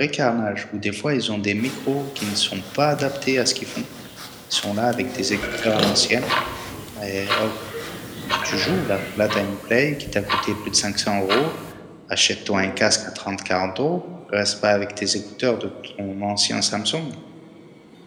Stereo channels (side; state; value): both; identical; correlation 1.00